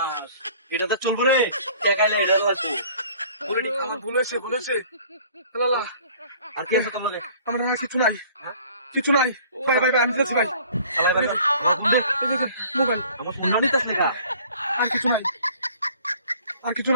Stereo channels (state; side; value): inverted; both; correlation -0.52